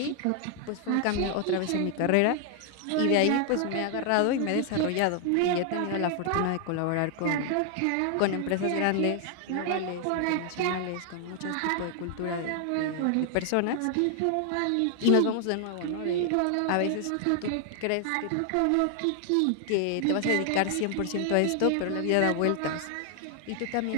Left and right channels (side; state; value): both; different; correlation 0.00